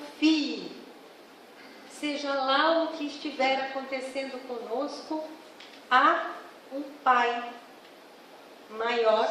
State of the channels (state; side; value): identical; both; correlation 1.00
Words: Seja lá o que estiver acontecendo conosco, há um Pai maior